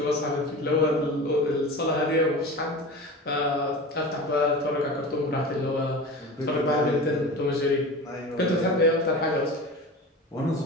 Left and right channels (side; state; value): both; normal; correlation 0.32